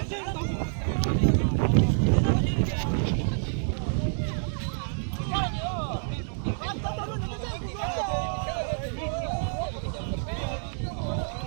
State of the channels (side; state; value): left; silent; digital silence